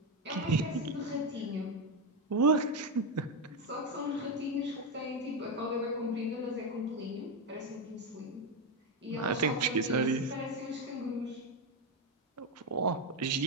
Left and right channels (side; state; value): both; normal; correlation 0.08